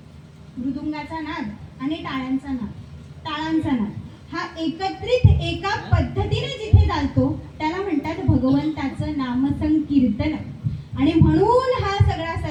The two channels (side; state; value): both; identical; correlation 1.00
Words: मृदुंगाचा नाद आणि टाळ्यांचा नाद, ताळांचा नाद हा एकत्रित एका पद्धतीने जिथे चालतो त्याला म्हणतात भगवंताचं नामसंकीर्तन. आणि म्हणून हा सगळा